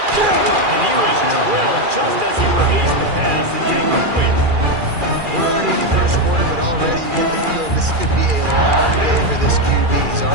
And he was drilled just as he released the pass. It's incomplete. We're already in the first quarter, but already you get the feeling this could be a long day for this QB. He's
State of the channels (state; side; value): late; left; 2.4 ms